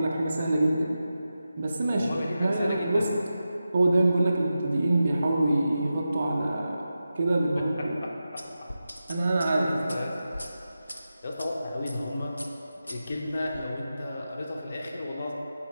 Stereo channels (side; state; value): both; inverted; correlation -0.91